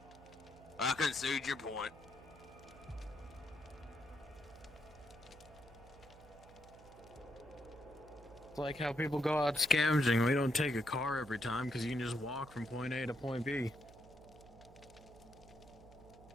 I concede your point. It's like how people go out scavenging. We don't take a car every time because you can just walk from point A to point B.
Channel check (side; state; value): right; noise; hum, 21 dB below the sound